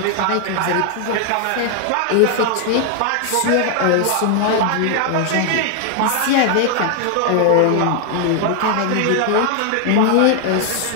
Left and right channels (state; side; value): different; both; correlation 0.00